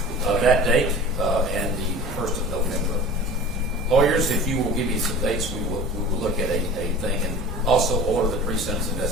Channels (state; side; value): normal; both; correlation 0.38